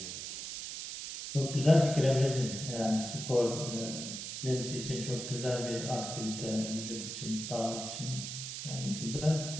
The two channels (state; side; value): noise; right; hiss, 7 dB below the sound